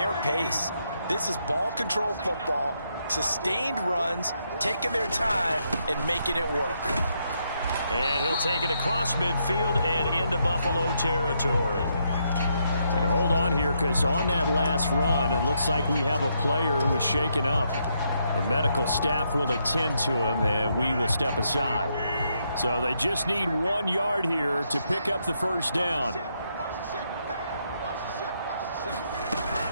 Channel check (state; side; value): inverted; both; correlation -0.77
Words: pace. This is ball control football, sustained runs, taking their time and making it work. And he'll take it across midfield and into Buffalo territory. And hold on here, because on that last run, it looks like we have a player who was shaken up. The medical staff will attend to him, and we will step aside. So they just need 1 yard here to pick up the first down.